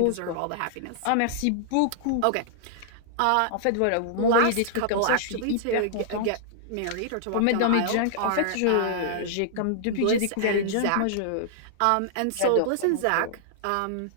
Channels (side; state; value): both; different; correlation -0.01